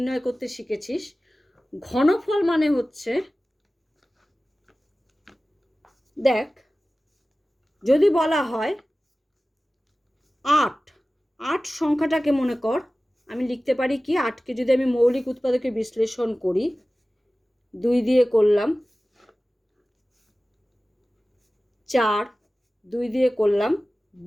করতে শিখেছিস। ঘনফল মানে হচ্ছে, দেখ, যদি বলা হয় 8 সংখ্যাটাকে মনে কর, আমি লিখতে পারি কি, 8কে যদি আমি মৌলিক উৎপাদকে বিশ্লেষণ করি, 2 দিয়ে করলাম 4, 2 দিয়ে করলাম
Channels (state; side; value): normal; both; correlation 0.97